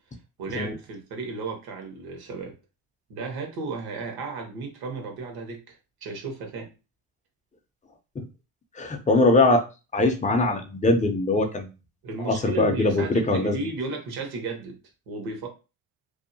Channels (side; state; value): both; normal; correlation 0.20